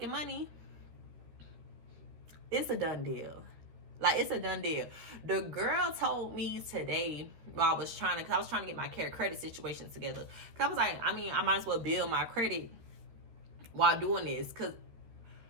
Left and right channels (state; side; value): late; left; 13 ms